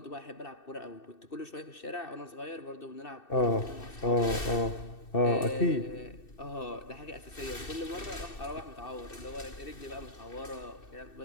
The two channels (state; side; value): late; right; 2.6 ms